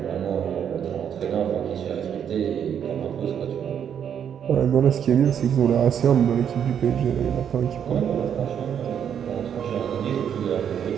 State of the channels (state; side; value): quieter; left; 8.5 dB